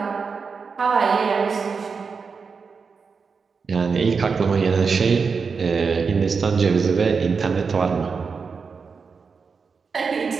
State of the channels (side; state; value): left; quieter; 5.3 dB